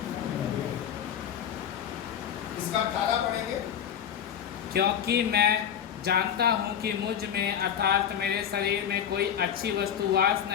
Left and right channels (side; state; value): right; quieter; 8.9 dB